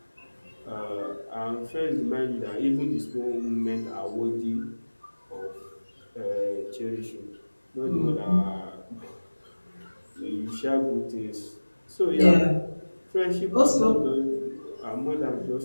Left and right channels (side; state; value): both; inverted; correlation -1.00